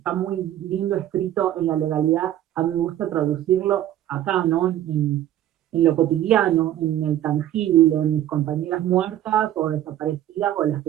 muy lindo escrito en la legalidad, a mí me gusta traducirlo acá, ¿no? En lo cotidiano, en el tangible, en mis compañeras muertas o desaparecidas o las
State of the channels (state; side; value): quieter; left; 12.3 dB